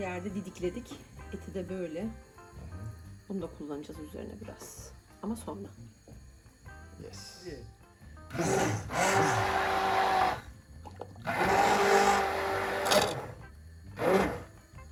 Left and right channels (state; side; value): identical; both; correlation 1.00